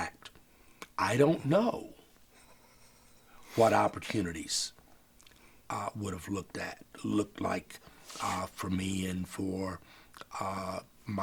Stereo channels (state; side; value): identical; both; correlation 1.00